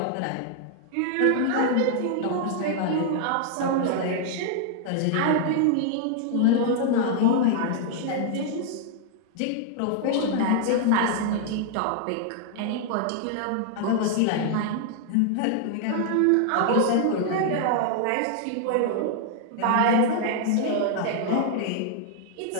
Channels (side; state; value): both; different; correlation -0.01